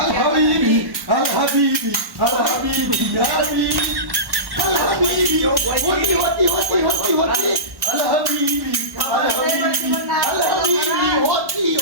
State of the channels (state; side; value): late; left; 1.1 ms